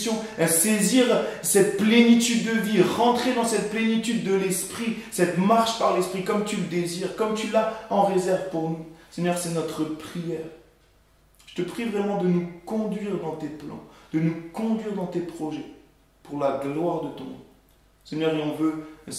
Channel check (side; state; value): both; identical; correlation 1.00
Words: saisir cette plénitude de vie, rentrer dans cette plénitude de l'esprit, cette marche par l'esprit comme tu le désires, comme tu l'as en réserve pour nous. Seigneur, c'est notre prière. Je te prie vraiment de nous conduire dans tes plans, de nous conduire dans tes projets, pour la gloire de ton nom. Seigneur, et on veut